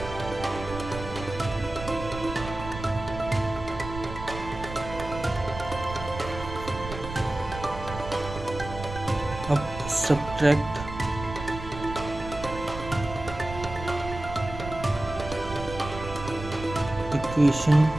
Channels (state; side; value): noise; right; rumble, 10 dB below the sound